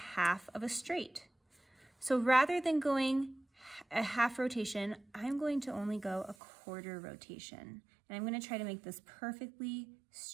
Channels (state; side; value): drops out; left; at 6.4 s